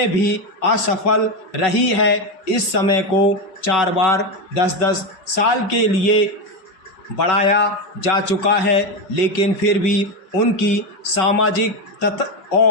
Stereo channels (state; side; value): late; right; 5.3 ms